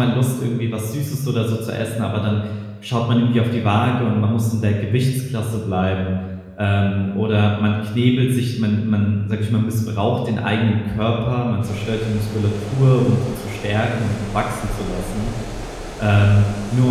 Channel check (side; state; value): both; identical; correlation 1.00